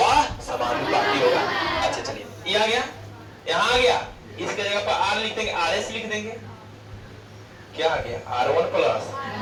समानुपाती होगा। अच्छा चलिए, ये आ गया, यहाँ आ गया। इसके जगह पर R लिख देंगे, RS लिख देंगे। क्या आ गया? R1 plus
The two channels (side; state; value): both; identical; correlation 1.00